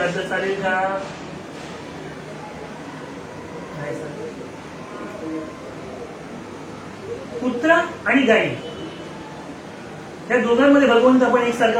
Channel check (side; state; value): both; identical; correlation 1.00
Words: चालेल का? नाही चालेल. कुत्रा आणि गाई या दोघांमध्ये भगवंत आपण